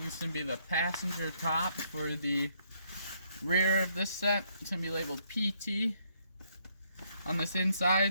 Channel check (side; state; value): both; inverted; correlation -0.71